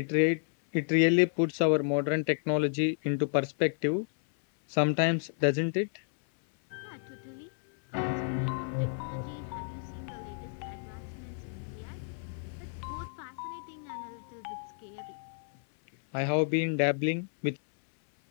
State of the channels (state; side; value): silent; right; 57 dB below the other